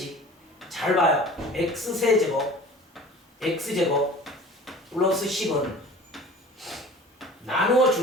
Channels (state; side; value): normal; both; correlation 0.42